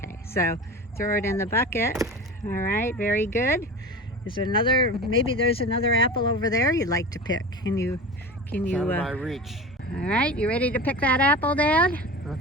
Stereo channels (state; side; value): normal; both; correlation 0.32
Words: So throw it in the bucket. All right, very good. Is there another, maybe there's another apple over there you'd like to pick. Can you It's out of my reach. All right, you ready to pick that apple, Dad?